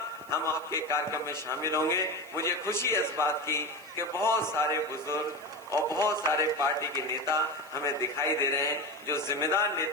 हम आपके कार्यक्रम में शामिल होंगे। मुझे खुशी है इस बात की कि बहुत सारे बुजुर्ग और बहुत सारे पार्टी के नेता हमें दिखाई दे रहे हैं जो जिम्मेदार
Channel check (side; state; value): right; noise; hiss, 24 dB below the sound